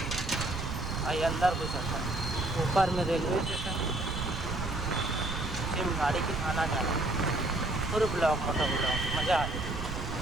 आई अंदर घुस जाता। ऊपर में रेलवे स्टेशन नीचे में गाड़ी के आना जाना पूरे ब्लॉक मोटा ब्लॉक मज़ा आ जाए।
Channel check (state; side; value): noise; right; rumble, 5 dB below the sound